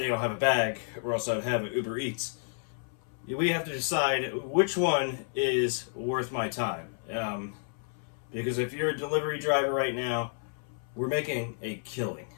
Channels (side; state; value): right; silent; 57 dB below the other